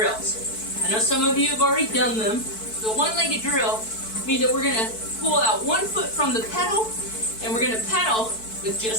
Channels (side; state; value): right; late; 4.6 ms